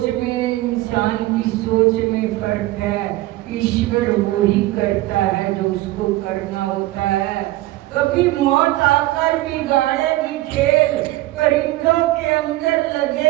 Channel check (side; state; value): left; quieter; 17.5 dB